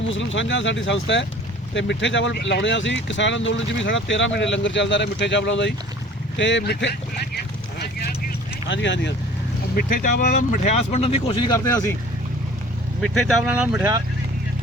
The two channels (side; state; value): both; normal; correlation 0.47